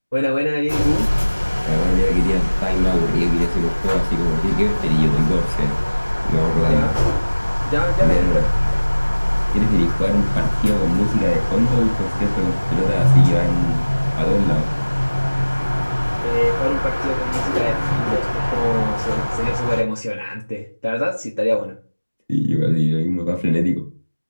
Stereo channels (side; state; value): both; inverted; correlation -1.00